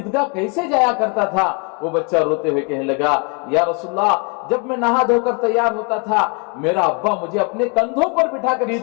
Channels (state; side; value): quieter; right; 33.3 dB